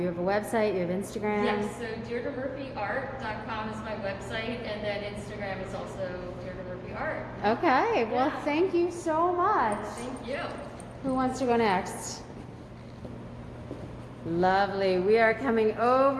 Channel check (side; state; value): both; identical; correlation 1.00